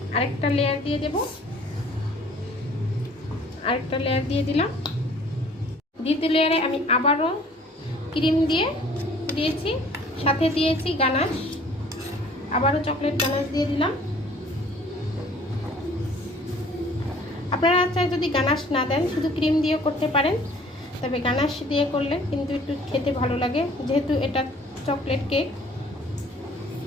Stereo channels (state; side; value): normal; both; correlation 0.54